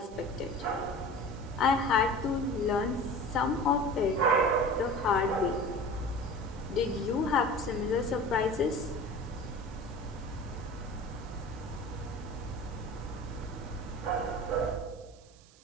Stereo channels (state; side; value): noise; right; hiss, 26 dB below the sound